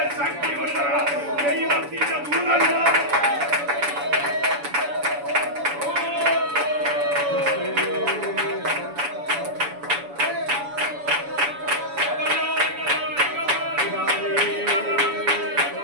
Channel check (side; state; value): left; late; 7.0 ms